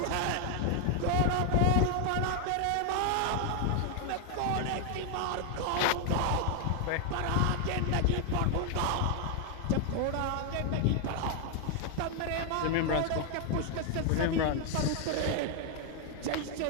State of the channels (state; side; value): different; both; correlation 0.00